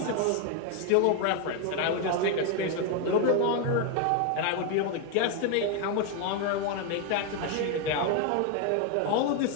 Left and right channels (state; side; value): different; both; correlation 0.01